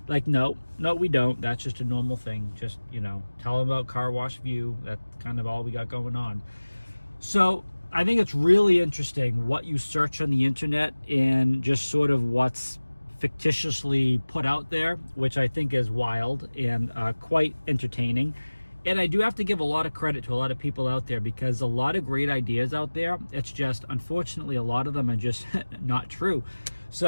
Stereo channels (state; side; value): inverted; both; correlation -1.00